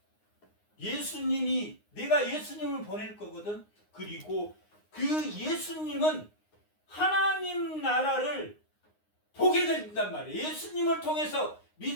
예수님이 내가 예수님을 보낼 거거든. 그리고 그 예수님은 하나님 나라를 보게 된단 말이에요. 예수님을 통해서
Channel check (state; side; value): late; right; 9.7 ms